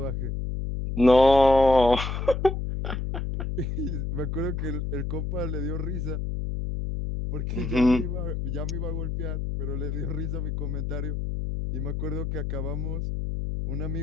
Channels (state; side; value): noise; left; hum, 3 dB below the sound